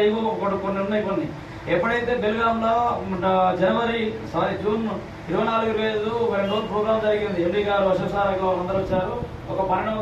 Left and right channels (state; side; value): identical; both; correlation 1.00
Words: ఏవో కొన్ని ఉన్నాయి. కొన్ని ఎప్పుడైతే బెల్గాంలో జూన్ 24, 25 ఒక 2 రోజులు ప్రోగ్రామ్ జరిగింది. ఎండి గారు, అశోక్ సార్ అందరూ వచ్చారు. ఒక